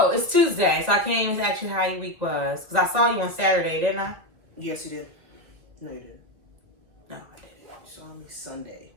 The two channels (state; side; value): late; left; 1.9 ms